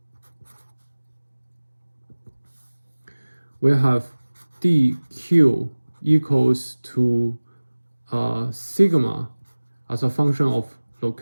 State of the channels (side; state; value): both; inverted; correlation -1.00